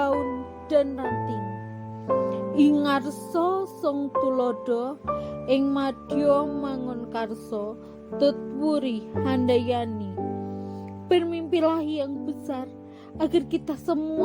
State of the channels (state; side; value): identical; both; correlation 1.00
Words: dan ranting. Ingarso song tulodo, ing madya mangun karso, tutwuri handayani. Bermimpilah yang besar, agar kita